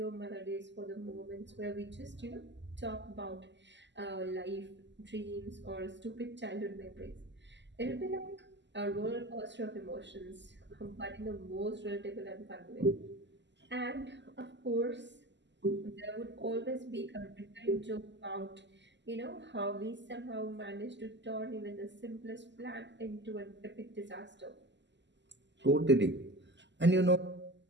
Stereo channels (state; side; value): late; left; 0.52 ms